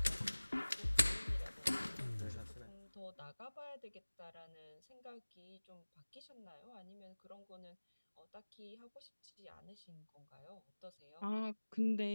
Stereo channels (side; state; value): both; inverted; correlation -1.00